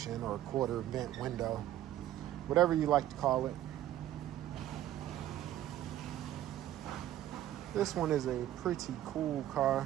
or quarter vent window, whatever you like to call it. This one is a pretty cool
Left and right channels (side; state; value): left; quieter; 13.0 dB